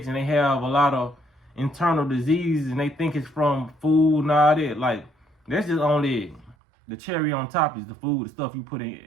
and they have a lot of internal diseases, and they think it's from food and all that. Like, that's just only the cherry on top, is the food, the stuff you put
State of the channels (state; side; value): drops out; left; at 6.6 s